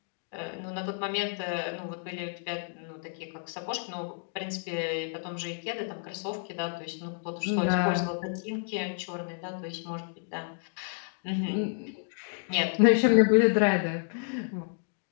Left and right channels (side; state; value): right; silent; 58 dB below the other